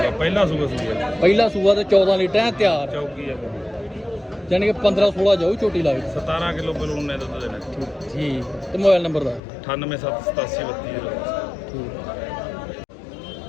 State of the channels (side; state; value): right; drops out; at 9.4 s